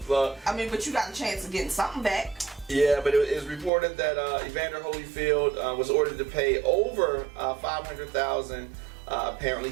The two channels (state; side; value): drops out; left; at 3.7 s